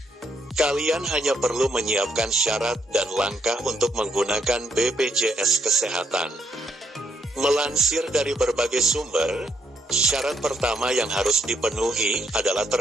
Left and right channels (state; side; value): normal; both; correlation 0.75